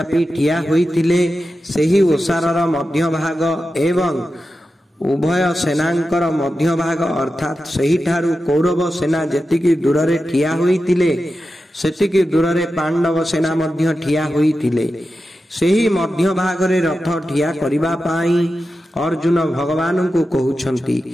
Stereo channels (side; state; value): both; normal; correlation 0.91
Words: ठिया होइतिले सेही ओसारर मध्य भाग एवं उभय सेनांकर मध्य भाग अर्थात सही ठारू कौरव सेना जेतिकी दूररे ठिया होइतिले सेतिकी दूररे पांडव सेना मध्य ठिया होइतिले। सेही मध्य भागरे रथ ठिया करिबा पाई अर्जुन भगवान को